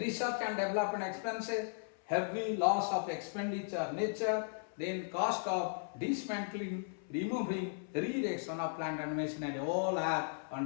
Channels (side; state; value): right; silent; 53 dB below the other